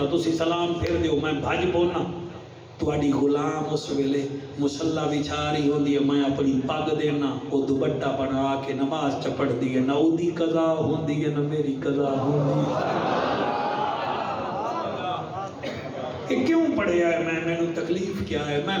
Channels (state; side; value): identical; both; correlation 1.00